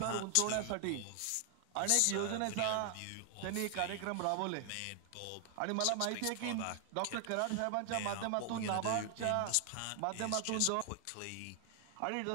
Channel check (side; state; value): both; different; correlation 0.00